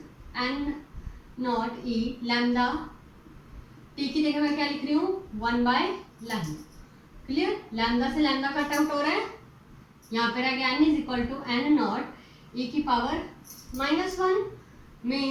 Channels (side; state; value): both; identical; correlation 1.00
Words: n not e lambda T की जगह मैं क्या लिख रही हूँ 1 लैम्डा। क्लियर? लैम्डा से लैम्डा कट आउट हो रहा है, यहाँ पे रह गया n = n नॉट e की power -1